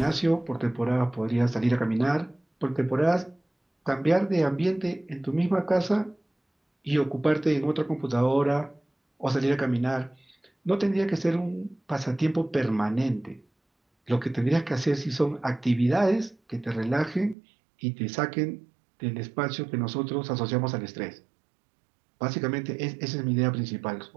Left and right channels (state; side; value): drops out; left; at 17.4 s